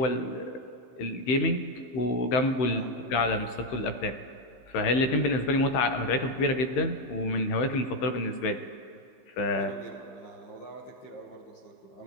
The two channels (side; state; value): right; late; 15 ms